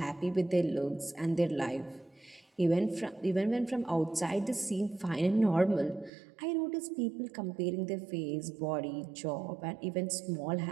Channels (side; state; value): left; drops out; at 6.1 s